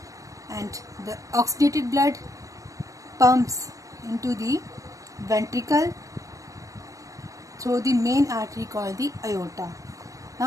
and the oxygenated blood pumps into the ventricle through the main artery called the aorta.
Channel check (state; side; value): late; left; 0.16 ms